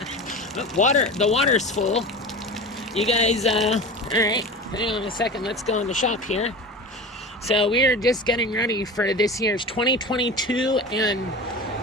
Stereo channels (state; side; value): normal; both; correlation 0.31